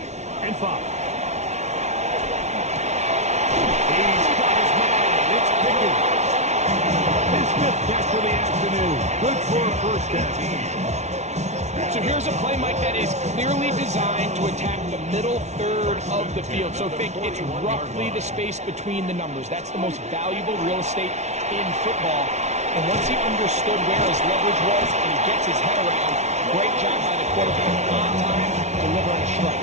and 5. Catch for the afternoon. Good for a 1st down. So here's a play, Mike, that is clearly designed to attack the middle 3rd of the field. So think it's roughly the space between the numbers. That's the most valuable real estate in football. And once he understood where his leverage was and he gets his head around, great job by the quarterback on time, delivering a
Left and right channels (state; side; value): late; left; 0.32 ms